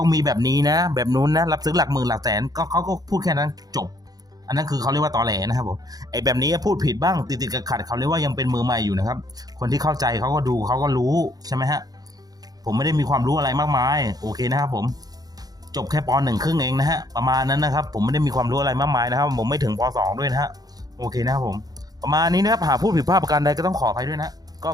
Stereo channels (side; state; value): left; late; 0.19 ms